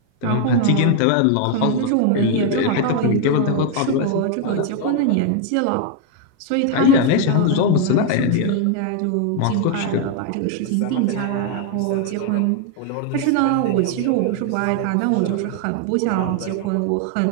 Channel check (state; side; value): different; both; correlation 0.00